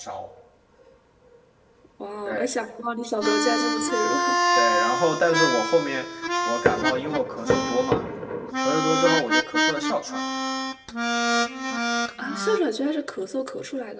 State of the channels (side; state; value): both; identical; correlation 1.00